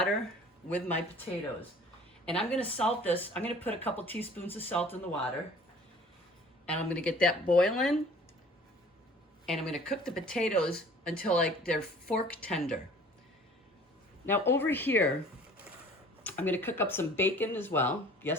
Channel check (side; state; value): both; normal; correlation 0.49